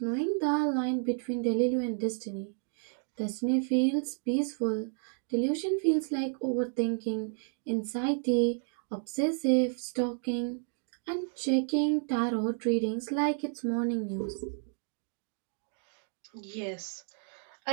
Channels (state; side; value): silent; left; 57 dB below the other